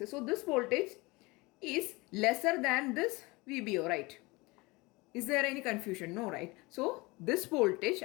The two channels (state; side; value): quieter; right; 24.0 dB